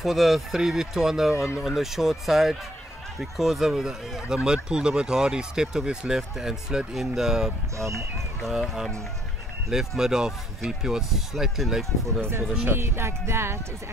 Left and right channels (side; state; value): both; normal; correlation 0.66